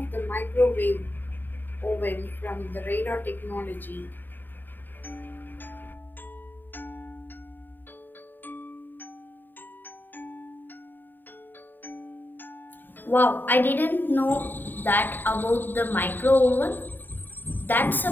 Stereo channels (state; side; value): late; right; 0.092 ms